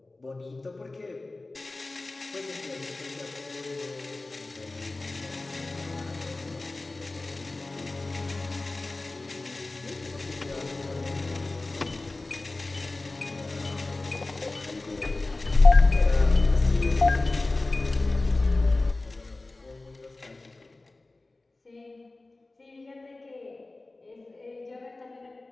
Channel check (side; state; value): right; quieter; 3.1 dB